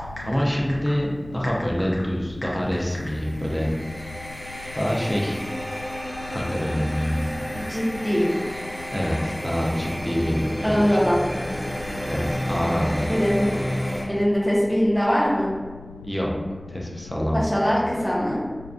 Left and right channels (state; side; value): noise; left; rumble, 17 dB below the sound